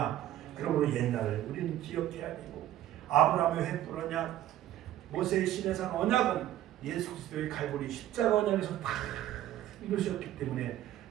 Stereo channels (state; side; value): quieter; left; 12.9 dB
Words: 그러므로 옛날을 우리는 기억해야 되고, 아브라함의 횃불 언약, 모세의 시내산 언약은 예수 그리스도의 갈보리 십자가 언약에서 다 이루셨기 때문에